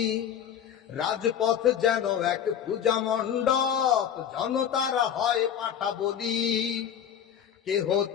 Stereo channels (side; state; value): right; quieter; 9.1 dB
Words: রাজপথ যেন এক পূজা মণ্ডপ, জনতারা হয় পাঠা বলি। কে